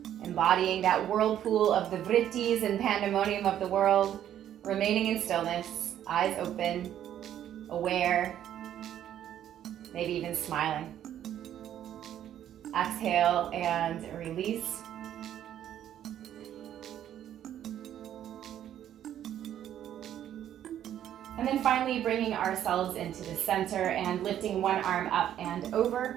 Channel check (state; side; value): quieter; left; 10.9 dB